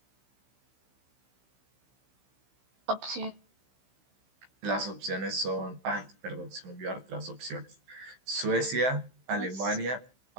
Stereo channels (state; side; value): late; left; 15 ms